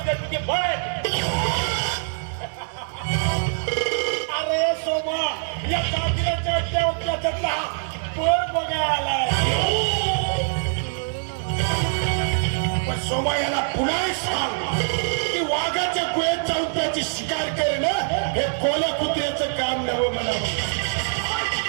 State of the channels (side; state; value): left; silent; 63 dB below the other